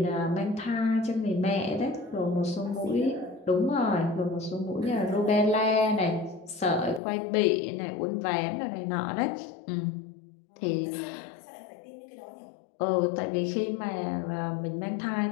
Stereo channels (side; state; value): right; drops out; at 7.0 s